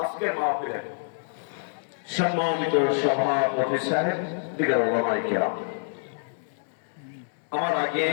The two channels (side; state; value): right; silent; digital silence